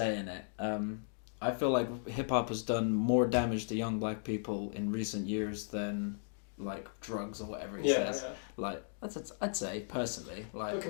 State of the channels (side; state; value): right; silent; digital silence